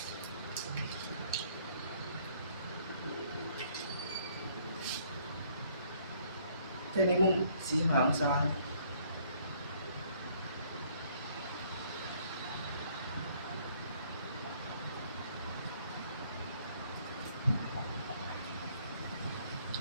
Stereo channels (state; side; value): inverted; both; correlation -0.63